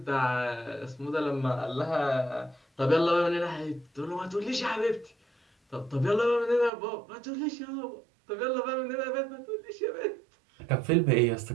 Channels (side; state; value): left; drops out; at 6.7 s